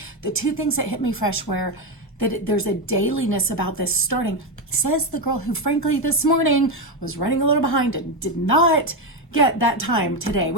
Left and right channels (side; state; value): both; normal; correlation 0.10